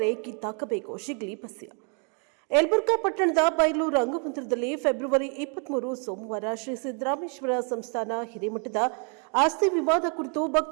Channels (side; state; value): left; quieter; 38.6 dB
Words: ಕಿತ್ತಾಕಬೇಕು. ಶಿಗ್ಲಿ ಬಸ್ಯ ಯಲಬುರ್ಗಾ ಪಟ್ಟಣದ ಬಯಲು ರಂಗಮಂದಿರದಲ್ಲಿ ಫೆಬ್ರವರಿ 23 ಸೋಮವಾರ ಶ್ರೀ ಸಿದ್ದರಾಮೇಶ್ವರ ಸಂಸ್ಥಾನ ಹಿರೇಮಠದ ಆಸ್ತಿ ವಿವಾದ ಕುರಿತು